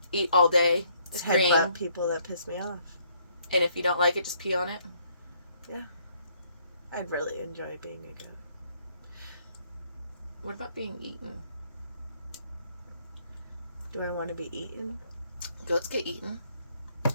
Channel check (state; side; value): inverted; both; correlation -0.67